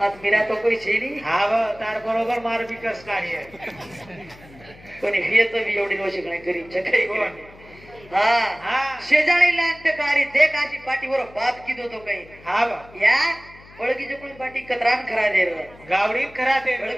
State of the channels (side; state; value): left; noise; hum, 23 dB below the sound